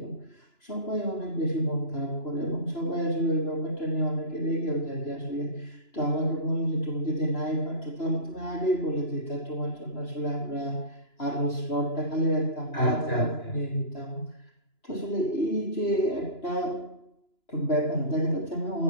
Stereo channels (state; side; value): late; right; 2.9 ms